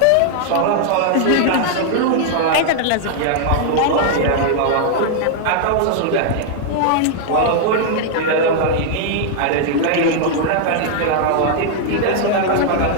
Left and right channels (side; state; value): both; different; correlation 0.00